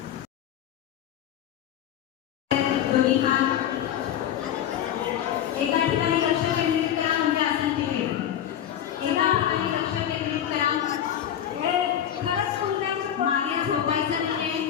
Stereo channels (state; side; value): quieter; right; 10.3 dB